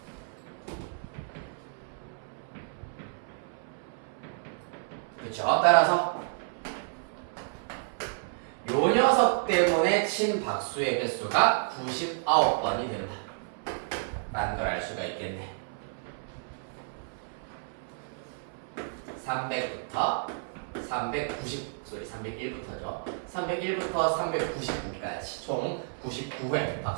그렇죠? 따라서 요 녀석 때문에 친 박수의 횟수가 99번이 됩니다. 라는 걸 알 수가 있겠네. 300부터 301부터죠. 301부터 399까지 총 99회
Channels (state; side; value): silent; left; 57 dB below the other